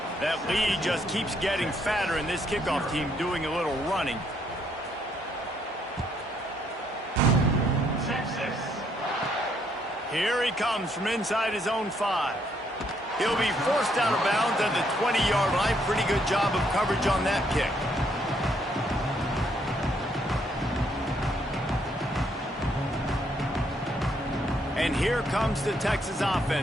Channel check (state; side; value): normal; both; correlation 0.71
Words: That lead just keeps getting fatter, and this kickoff team doing a little running. Here he comes from inside his own 5. He'll be forced out of bounds at the 20-yard line. Pretty good job of coverage on that kick. And here comes the Texas